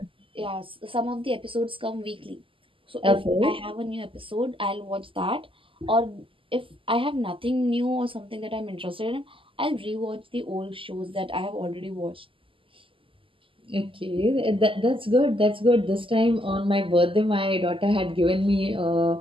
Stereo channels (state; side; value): late; left; 0.25 ms